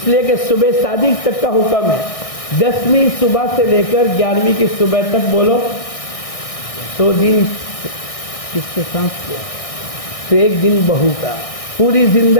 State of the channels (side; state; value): right; late; 1.6 ms